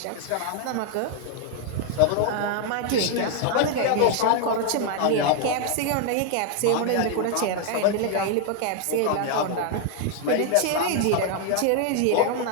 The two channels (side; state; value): both; different; correlation 0.00